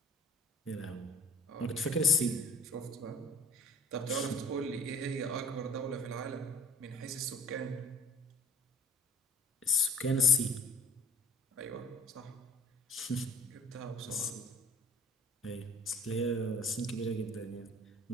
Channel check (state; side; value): normal; both; correlation 0.48